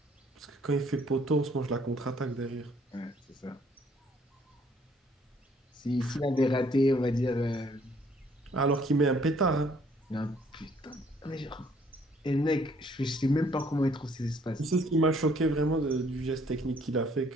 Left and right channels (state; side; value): normal; both; correlation 0.63